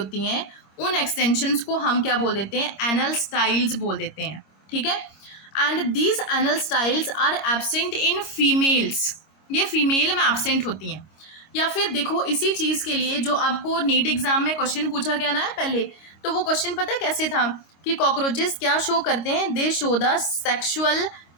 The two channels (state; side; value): late; right; 26 ms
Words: हैं, उन एक्सटेंशंस को हम क्या बोल देते हैं, एनल स्टाइल्स बोल देते हैं, ठीक है। And these anal styles are absent in females, ये फीमेल में एब्सेंट होती हैं। या फिर देखो, इसी चीज़ के लिए जो आपको नीट एग्जाम में क्वेश्चन पूछा गया ना पहले, तो वो क्वेश्चन पता है कैसे था कि कॉकरोचेस क्या शो करते हैं, they show the sexual